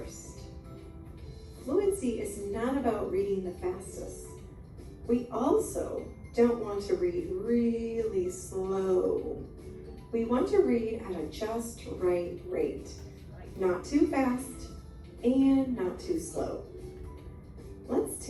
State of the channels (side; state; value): both; identical; correlation 1.00